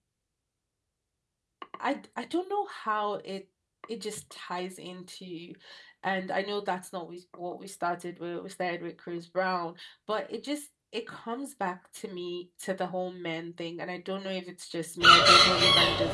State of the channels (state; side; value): identical; both; correlation 1.00